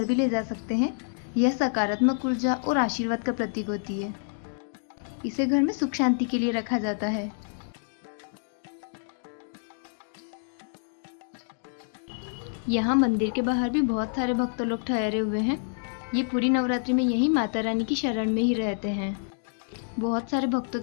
भी ले जा सकते हैं। यह सकारात्मक ऊर्जा और आशीर्वाद का प्रतीक होती है। इसे घर में सुख शांति के लिए रखा जाता है। यहाँ मंदिर के बाहर भी बहुत सारे भक्त लोग ठहरे हुए हैं। ये पूरी नवरात्रि में यहीं माता रानी की शरण में ही रहते हैं। बहुत सारे भक्तों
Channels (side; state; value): right; silent; 59 dB below the other